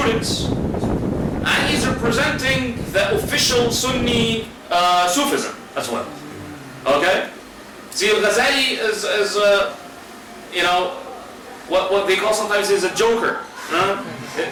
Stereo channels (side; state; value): both; identical; correlation 1.00